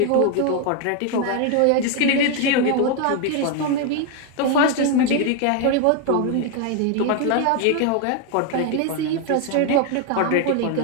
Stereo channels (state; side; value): different; both; correlation 0.01